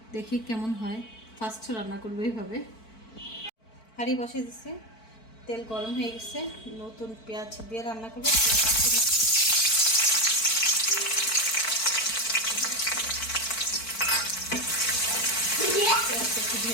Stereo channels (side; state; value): right; late; 4.5 ms